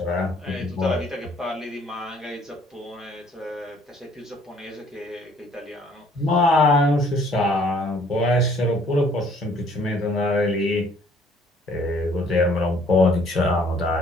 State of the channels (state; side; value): normal; both; correlation 0.60